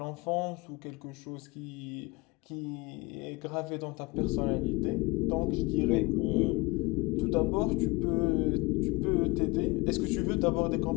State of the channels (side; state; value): right; quieter; 24.6 dB